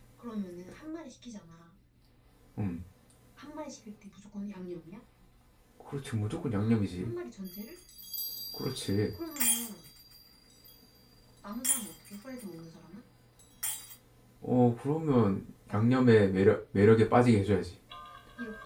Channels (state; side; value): identical; both; correlation 1.00